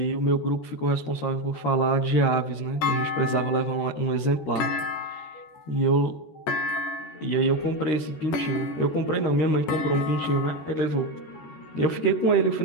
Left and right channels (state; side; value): late; right; 13 ms